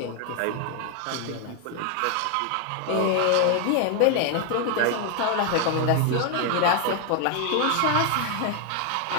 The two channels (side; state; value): both; different; correlation 0.00